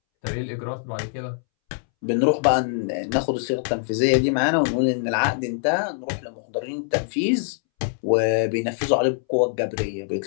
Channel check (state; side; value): silent; right; 63 dB below the other